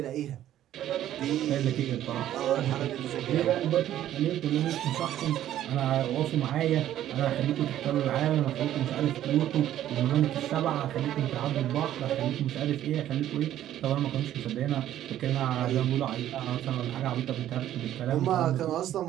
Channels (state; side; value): quieter; left; 12.2 dB